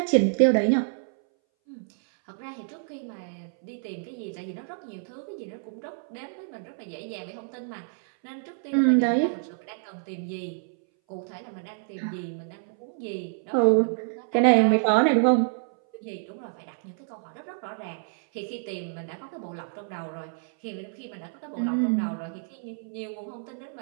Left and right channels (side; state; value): left; silent; 59 dB below the other